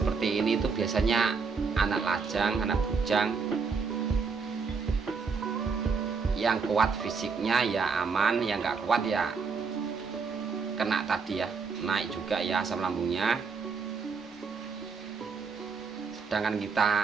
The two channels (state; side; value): quieter; left; 5.2 dB